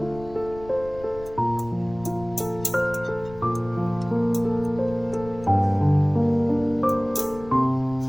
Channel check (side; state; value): left; noise; rumble, 18 dB below the sound